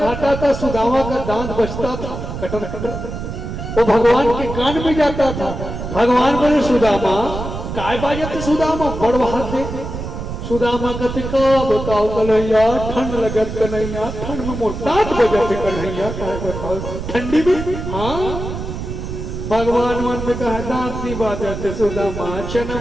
था सुदामा का दांत बचता था, कटर कटर, वो भगवान के कान में जाता था। भगवान बोले सुदामा काय बाजत सुदामा बड़ दे। सुदामा कहते का बताओ कन्हैया, ठंड लगत कन्हैया, ठंड में मोर दांत बजत कन्हैया, काय बताओ ठंडी में। हाँ, भगवान मन में कहा दांत नहीं बाजते सुदामा, चना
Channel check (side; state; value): right; noise; rumble, 7 dB below the sound